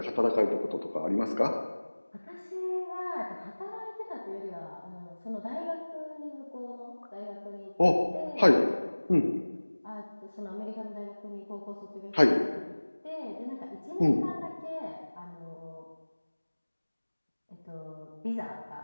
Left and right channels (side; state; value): both; inverted; correlation -1.00